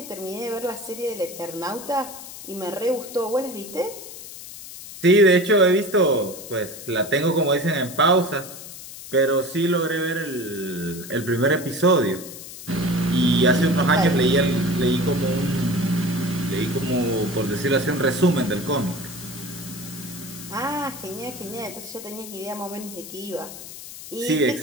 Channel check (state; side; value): noise; left; hiss, 13 dB below the sound